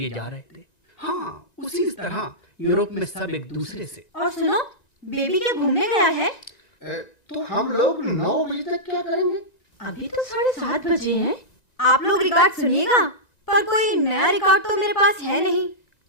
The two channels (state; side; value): late; right; 1.9 ms